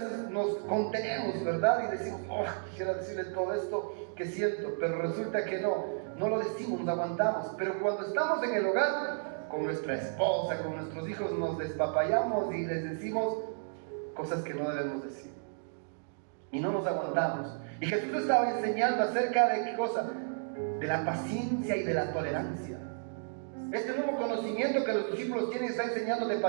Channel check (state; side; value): silent; left; digital silence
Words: nos contenemos, ¿verdad? Y decimos, quisiera decirle todo esto que siento, pero resulta que no lo decimos, nos aguantamos. Pero cuando estamos en el hogar, con nuestra esposa, con nuestros hijos, nos despapallamos y les decimos cosas que no debemos decir. Y no nos aguantamos. Y Jesús estaba enseñando acerca de qué cosa, de la paciencia y de la tolerancia. Este nuevo conocimiento que los discípulos tienen está enseñando de